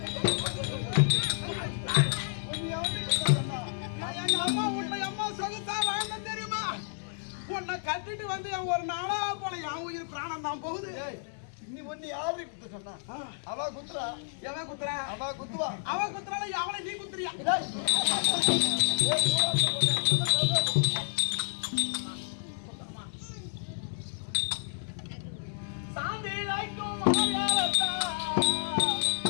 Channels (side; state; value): right; silent; digital silence